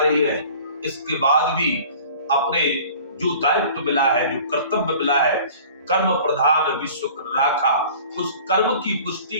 है, इसके बाद भी अपने जो दायित्व मिला है, जो कर्तव्य मिला है, कर्म प्रधान विश्व राखा, उस कर्म की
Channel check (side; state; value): both; inverted; correlation -0.46